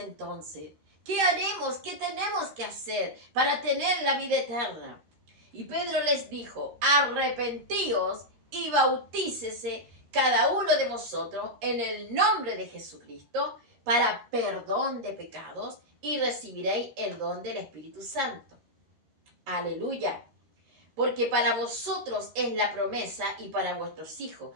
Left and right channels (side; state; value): left; late; 13 ms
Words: ¿Qué haremos? ¿Qué tenemos que hacer para tener la vida eterna? Y Pedro les dijo: arrepentíos y bautícese cada uno de vosotros en el nombre de Jesucristo para perdón de pecados y recibiréis el don del Espíritu Santo. Aleluya. Porque para vosotros es la promesa y para vuestros hijos